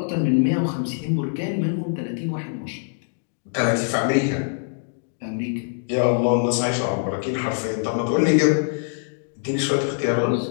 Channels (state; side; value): silent; right; digital silence